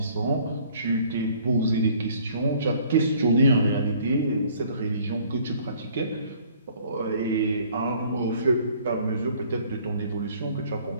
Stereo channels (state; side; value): inverted; both; correlation -0.57